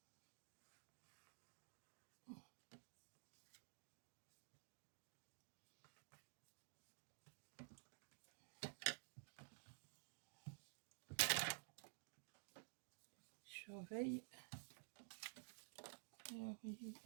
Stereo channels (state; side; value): silent; left; digital silence